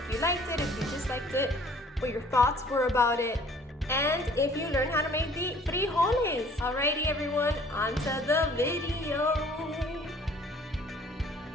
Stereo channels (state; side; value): normal; both; correlation 0.54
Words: you liked it, if you disliked it, what your thoughts were about it, and if you learned how to make the frijoles. Alrighty everyone, on to the video.